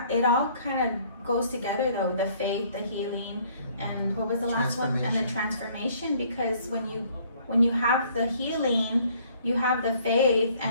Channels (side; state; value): both; inverted; correlation -0.60